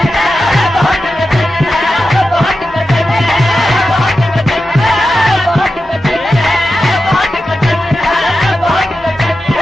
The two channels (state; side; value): normal; both; correlation 0.91